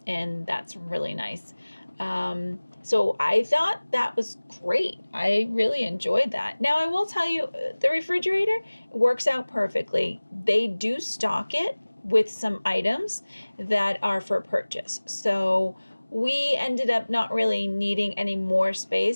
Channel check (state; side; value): inverted; both; correlation -1.00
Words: and that's really nice. So I thought that was great. I really enjoyed that. Now I will tell you, the refrigerator works out perfectly. They do stock it with some items that are for purchase. So we ended up not really needing any more